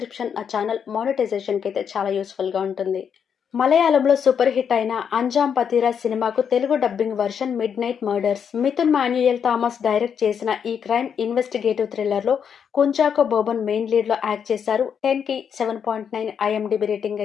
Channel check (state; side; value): quieter; right; 7.5 dB